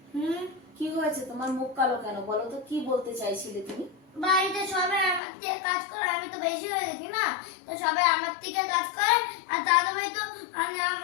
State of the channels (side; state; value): right; drops out; at 5.2 s